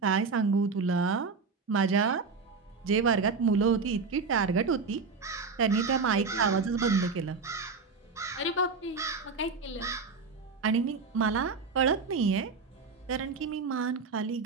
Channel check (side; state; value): left; quieter; 4.7 dB